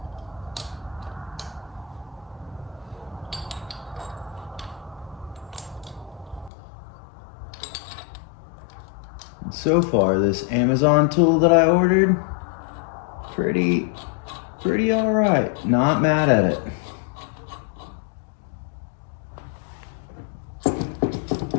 And so far, this Amazon tool that I ordered, pretty all right. Not mad at it.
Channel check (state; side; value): drops out; right; at 6.5 s